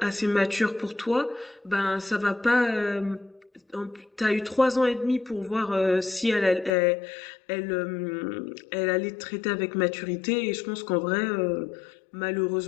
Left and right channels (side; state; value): right; drops out; at 6.8 s